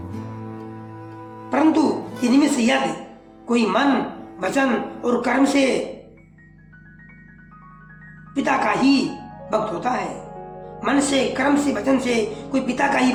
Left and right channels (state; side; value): identical; both; correlation 1.00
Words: परंतु इनमें से यदि कोई मन वचन और कर्म से पिता का ही भक्त होता है, मन से कर्म से वचन से कोई पिता का ही